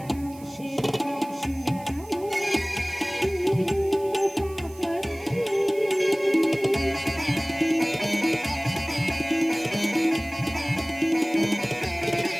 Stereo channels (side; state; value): right; noise; hiss, 22 dB below the sound